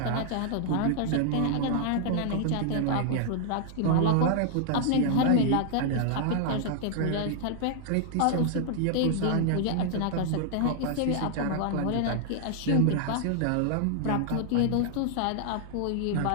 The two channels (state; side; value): different; both; correlation 0.00